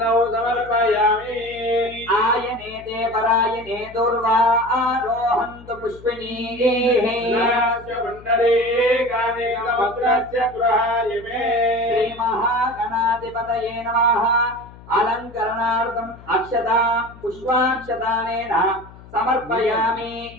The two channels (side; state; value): left; noise; hum, 20 dB below the sound